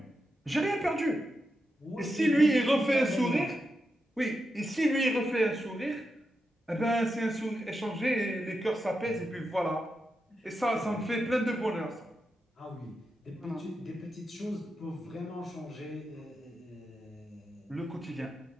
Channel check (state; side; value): normal; both; correlation 0.87